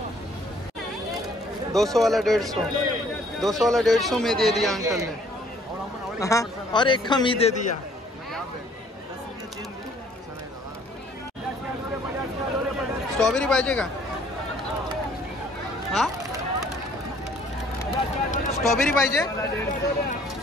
200 वाला 150, 200 वाला 150 में दे दिया अंकल ने. हाँ, और एक कम ही दे दिया. स्ट्रॉबेरी पाहिजे का? हा स्ट्रॉबेरी पाहिजे.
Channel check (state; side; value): normal; both; correlation 0.59